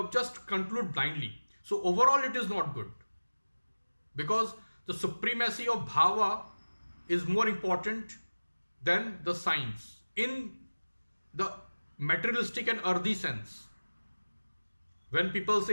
just conclude blindly. So overall, it is not good because the supremacy of bhava is more important than the signs in the materialistic and earthy sense. When people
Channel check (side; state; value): both; inverted; correlation -1.00